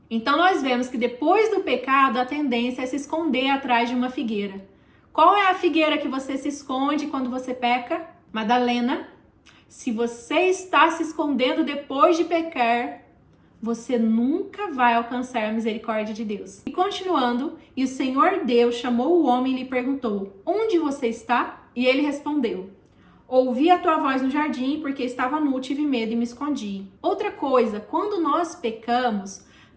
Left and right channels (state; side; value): identical; both; correlation 1.00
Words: Então nós vemos que depois do pecado, a tendência é se esconder atrás de uma figueira. Qual é a figueira que você se esconde quando você peca? Madalena, se você está se escondendo depois de pecar, você nunca vai alcançar a misericórdia de Deus. E continuando, e o Senhor Deus chamou o homem e lhe perguntou: onde você está? E ele respondeu: ouvi a tua voz no jardim, porque estava nu, tive medo e me escondi. Outra coisa, quando nós pecamos,